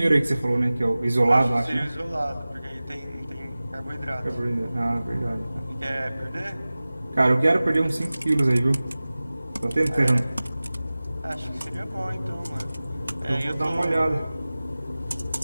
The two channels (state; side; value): inverted; both; correlation -0.98